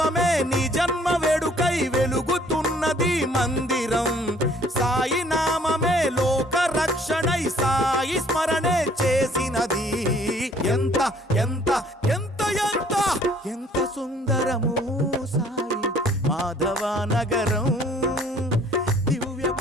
నీ జన్మ వేడుకై వెలుగుతున్నది మందిరం. సాయి నామమే లోక రక్షణై సాయి స్మరణే చేసినది. ఎంత ఎంత ఎంత ఎంత ఎంత సుందరము సాయి మాధవ నగరం. దివ్య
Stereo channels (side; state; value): both; normal; correlation 0.58